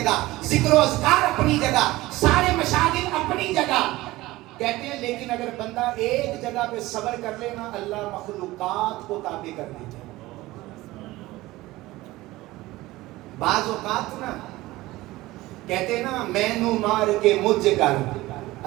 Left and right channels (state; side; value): quieter; left; 18.4 dB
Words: ذکر و اذکار اپنی جگہ, سارے مشاغل اپنی جگہ. کہتے ہیں لیکن اگر بندہ ایک جگہ پہ صبر کر لینا, اللہ مخلوقات کو تابع کر دیتا ہے. بعض اوقات نا کہتے ہیں نا میں نو مار کے مجھ کر,